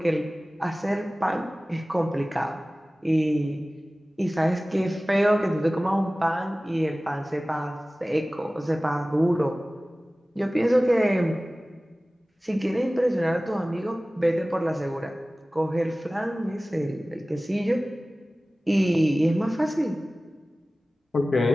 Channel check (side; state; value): both; normal; correlation 0.97